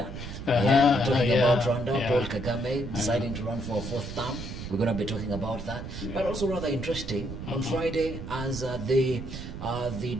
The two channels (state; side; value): noise; right; rumble, 8 dB below the sound